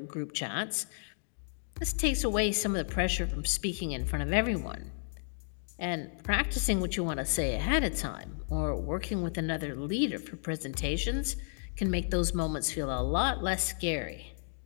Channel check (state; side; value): silent; right; digital silence